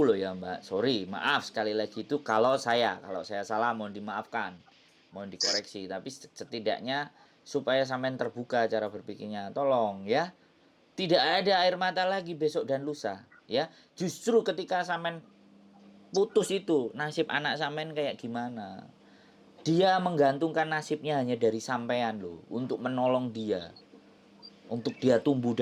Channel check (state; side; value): identical; both; correlation 1.00